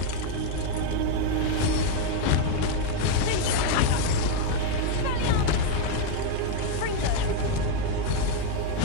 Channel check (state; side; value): different; both; correlation 0.01